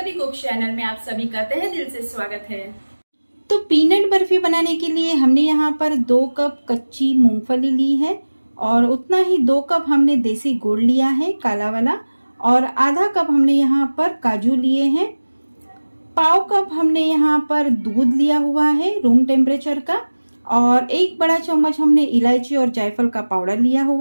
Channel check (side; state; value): both; inverted; correlation -1.00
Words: कुक चैनल में आप सभी का तहे दिल से स्वागत है। तो पीनट बर्फ़ी बनाने के लिए हमने यहाँ पर 2 कप कच्ची मूंगफली ली है और उतना ही 2 कप हमने देसी गुड़ लिया है काला वाला, और आधा कप हमने यहाँ पर काजू लिए हैं। पाव कप हमने यहाँ पर दूध लिया हुआ है रूम टेम्परेचर का, और 1 बड़ा चम्मच हमने इलायची और जायफल का पाउडर लिया